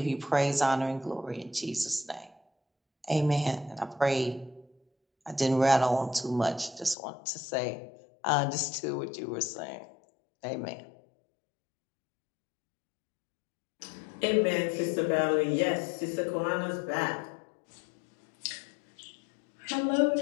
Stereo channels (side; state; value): right; drops out; at 7.0 s